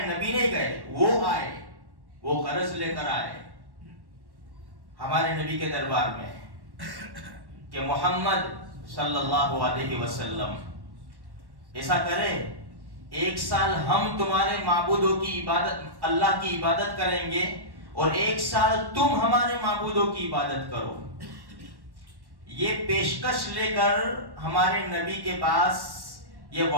نبی نہیں گئے, وہ آئے, وہ غرض لے کر آئے ہمارے نبی کے دربار میں کہ محمد صلی اللہ علیہ وسلم ایسا کرے, ایک سال ہم تمہارے معبودوں کی عبادت, اللہ کی عبادت کریں گے اور ایک سال تم ہمارے معبودوں کی عبادت کرو. یہ پیشکش لے کر ہمارے نبی کے پاس یہ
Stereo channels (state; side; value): late; left; 1.1 ms